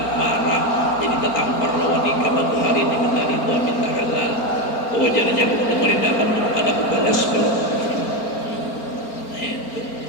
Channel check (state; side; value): late; right; 4.4 ms